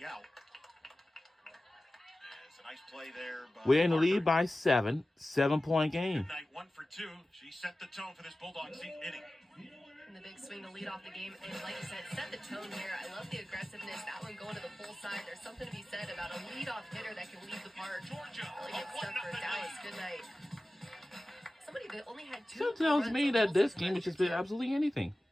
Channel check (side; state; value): both; normal; correlation 0.96